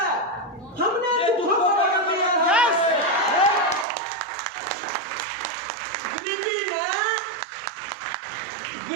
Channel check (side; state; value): left; drops out; at 3.9 s